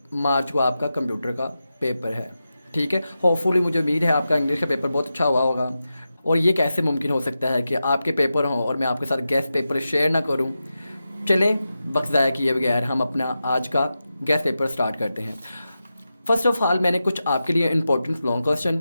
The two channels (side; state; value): both; inverted; correlation -0.91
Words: मार्च को आपका कंप्यूटर का पेपर है। ठीक है, होपफुली मुझे उम्मीद है आपका इंग्लिश का पेपर बहुत अच्छा हुआ होगा। और ये कैसे मुमकिन हो सकता है कि आपके पेपर हों और मैं आपके साथ गेस्ट पेपर शेयर ना करूं। चलें, वक्त ज़ाया किए बगैर हम अपना आज का गेस्ट पेपर स्टार्ट करते हैं। फर्स्ट ऑफ ऑल मैंने कुछ आपके लिए इंपॉर्टेंट लॉन्ग क्वेश्चन